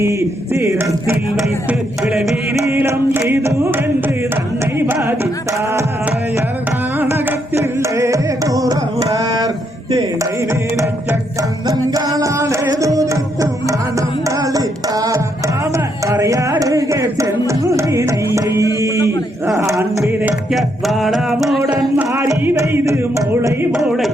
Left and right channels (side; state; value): both; normal; correlation 0.76